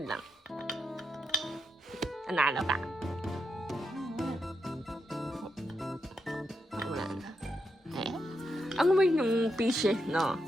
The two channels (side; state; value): both; normal; correlation 0.83